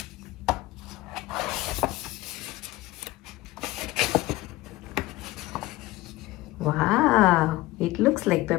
Wow, it looks like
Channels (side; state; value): right; quieter; 18.3 dB